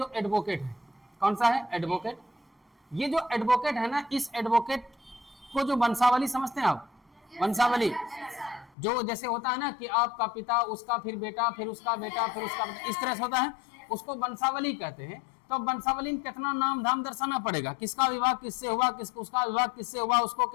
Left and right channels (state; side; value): drops out; right; at 8.7 s